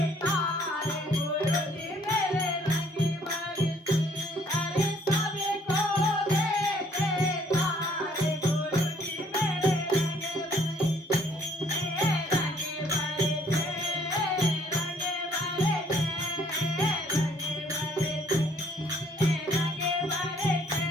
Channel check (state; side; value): normal; both; correlation 0.62